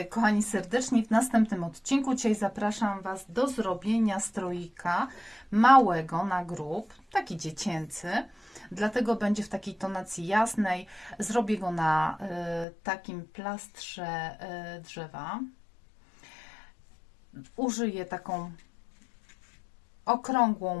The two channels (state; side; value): drops out; right; at 12.7 s